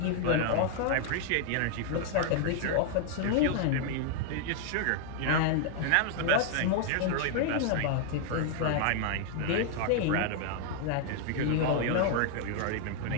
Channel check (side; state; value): both; different; correlation 0.00